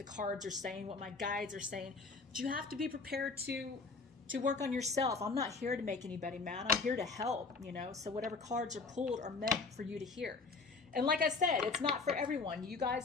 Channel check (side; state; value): right; quieter; 4.2 dB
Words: cards are saying, what my guides are saying. But you have to be prepared to work on yourself. I'm not here to make anybody mad. I'm here to help, so whatever cards are pulled are meant for you to hear. And like I said, it's not for everyone. You